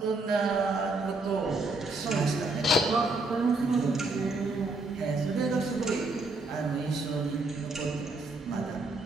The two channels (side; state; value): left; quieter; 3.0 dB